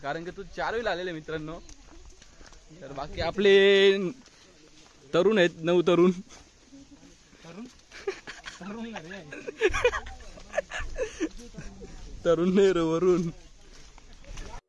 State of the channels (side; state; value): both; identical; correlation 1.00